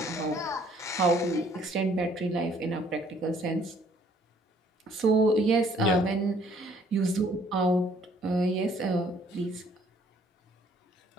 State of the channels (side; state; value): both; normal; correlation 0.62